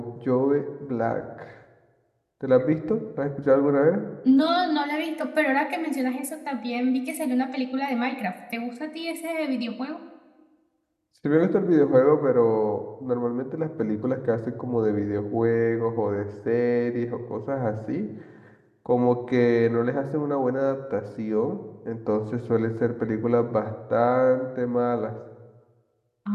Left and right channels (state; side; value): identical; both; correlation 1.00